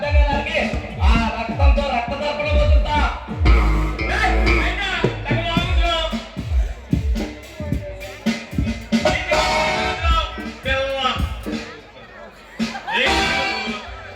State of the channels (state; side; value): identical; both; correlation 1.00